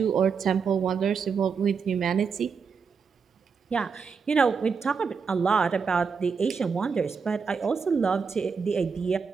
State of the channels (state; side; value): quieter; left; 5.7 dB